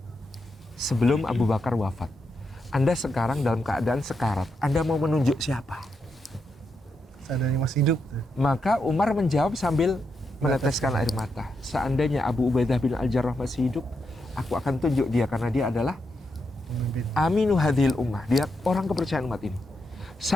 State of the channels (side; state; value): both; normal; correlation 0.83